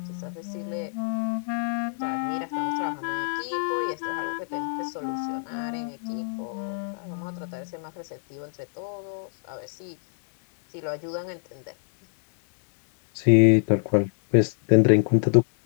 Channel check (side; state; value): right; silent; digital silence